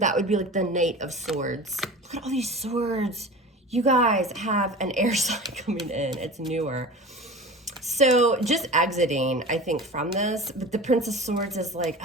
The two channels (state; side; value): normal; both; correlation 0.35